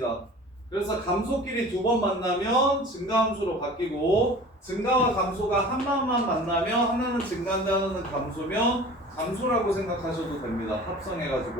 그래서 감소끼리 두 번 만나면 증가함수로 바뀌고 증가와 감소가 하나만 만나면 하나는 증가인데 하나는 감소면 감소라고 생각하셔도 됩니다.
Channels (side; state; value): both; normal; correlation 0.42